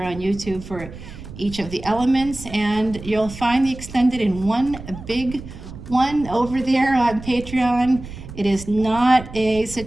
on YouTube for each of the elements, and you'll find the extended in one big one over there on Patreon. It is not a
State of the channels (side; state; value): right; noise; rumble, 13 dB below the sound